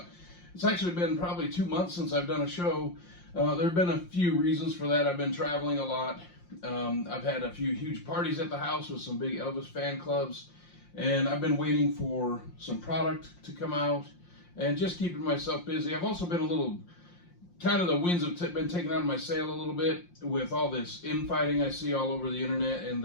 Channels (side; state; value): right; late; 5.7 ms